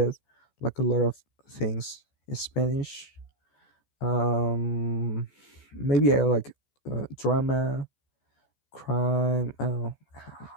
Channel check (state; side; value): late; right; 14 ms